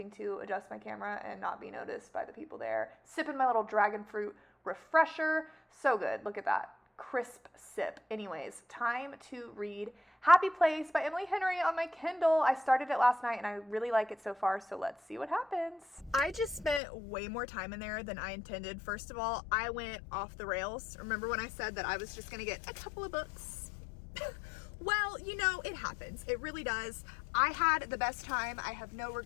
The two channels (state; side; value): drops out; right; at 16.8 s